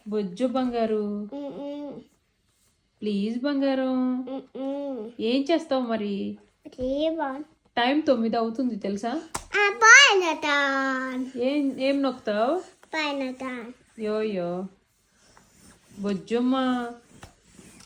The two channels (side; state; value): both; identical; correlation 1.00